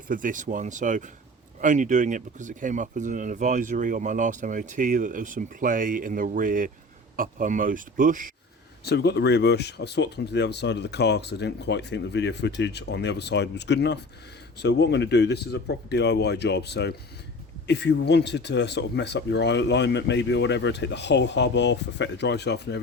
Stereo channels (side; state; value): both; normal; correlation 0.38